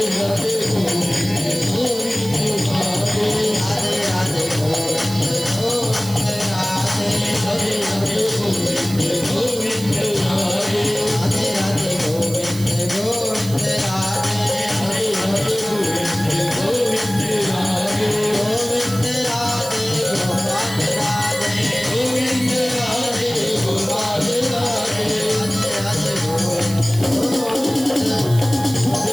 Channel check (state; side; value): noise; right; hiss, 13 dB below the sound